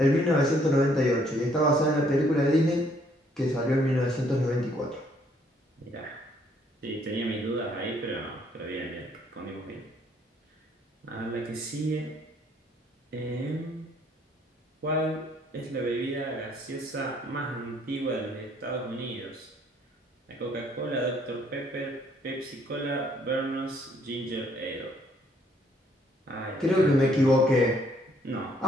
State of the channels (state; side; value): normal; both; correlation 0.66